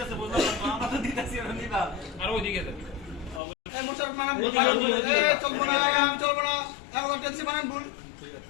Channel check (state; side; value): drops out; right; at 3.4 s